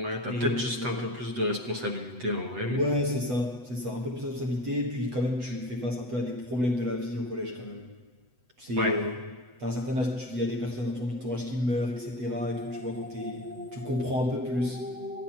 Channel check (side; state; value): left; late; 8.0 ms